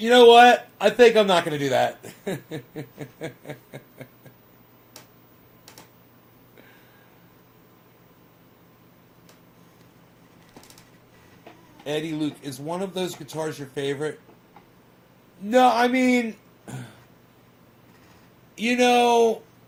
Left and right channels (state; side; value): identical; both; correlation 1.00